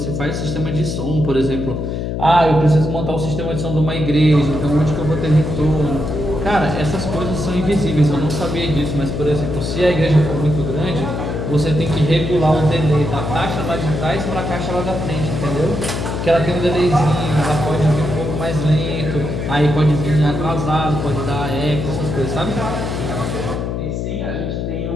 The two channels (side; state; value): left; noise; hum, 3 dB below the sound